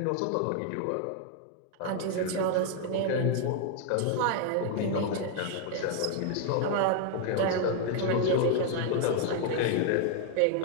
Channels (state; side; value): different; both; correlation 0.00